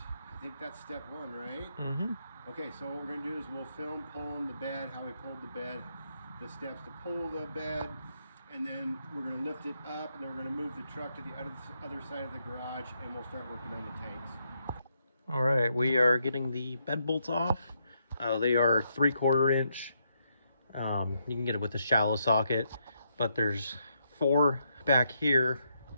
think that's step one, right? Okay, so what we're going to do is we'll film pulling the bed, how we pulled the bed, the steps to pull the bed, and then we're going to lift it up, and then we're going to move the truck to the other side of the garage, and we'll start working on the tanks. All right, we are getting the bed bolts off. They are 3/4 inch. You can get it with a shallow socket, but there's 4 back here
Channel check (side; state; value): both; inverted; correlation -0.78